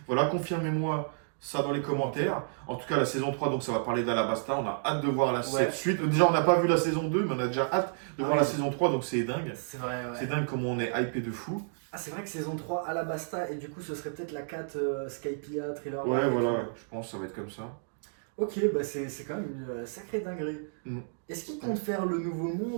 Voilà, confirmez-moi ça dans les commentaires. En tout cas, la saison 3, donc ça va parler d'Alabasta. On a hâte de voir cette suite. Déjà, on n'a pas vu la saison 2, mais on a déjà hâte de voir oui. la saison 3, donc c'est dingue. C'est vrai, ouais. C'est dingue comment on est hypé de fou. Ah, c'est vrai que saison 3 Alabasta, et du coup, ce serait peut-être la 4 Skypiea, Thriller. Ouais, Bark et voilà, tout. je pense que ça va être comme ça. Ok, bah c'est quand même une sacrée dinguerie. Mm. Est-ce qu'ils comptent faire le nouveau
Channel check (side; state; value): left; silent; digital silence